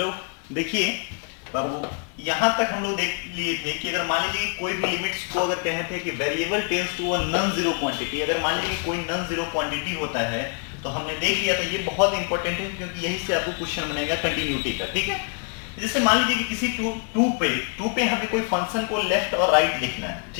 देखिए बाबू, यहाँ तक हम लोग देख लिए थे कि अगर मान लीजिए कोई भी लिमिट्स को अगर कहे थे कि variable tends to a non zero quantity, अगर मान लीजिए कोई नॉन जीरो क्वांटिटी होता है तो हमने देख लिया था। ये बहुत इंपॉर्टेंट है क्योंकि यही से आपको क्वेश्चन बनेगा कंटिन्यूटी का। ठीक है, जैसे मान लीजिए कि किसी टू पे हमें कोई फंक्शन को लेफ्ट और राइट लिखना है।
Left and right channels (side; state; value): right; quieter; 39.9 dB